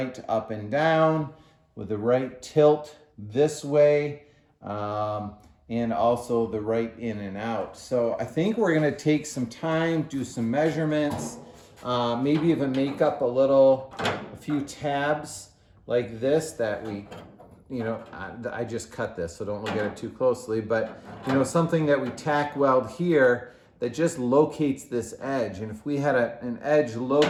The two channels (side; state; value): both; identical; correlation 1.00